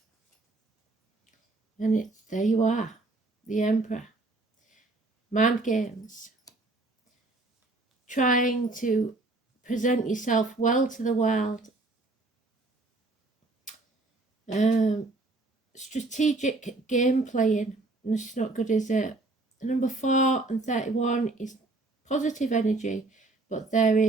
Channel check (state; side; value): quieter; left; 3.1 dB